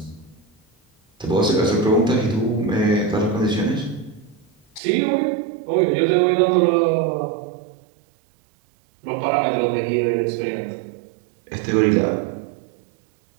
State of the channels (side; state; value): left; drops out; at 4.8 s